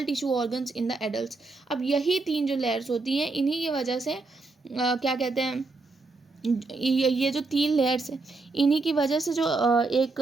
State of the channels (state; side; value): quieter; left; 3.6 dB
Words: tissue organs in the adult. अब यही 3 जो लेयर्स होती हैं इन्हीं की वजह से क्या कहते हैं ये जो 3 लेयर्स हैं इन्हीं की वजह से जो एक